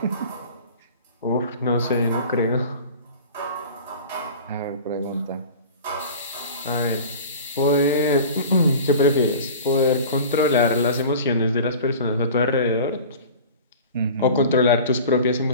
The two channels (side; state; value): both; inverted; correlation -0.39